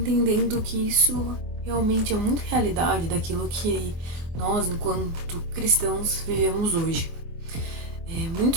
que isso realmente é muito realidade daquilo que nós, enquanto cristãos, vivemos hoje.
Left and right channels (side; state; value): left; late; 25 ms